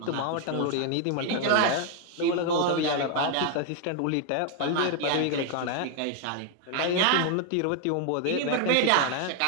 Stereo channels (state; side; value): different; both; correlation 0.00